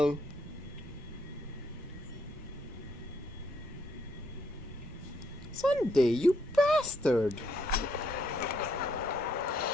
Sunday, you bastard!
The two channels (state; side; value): normal; both; correlation 0.72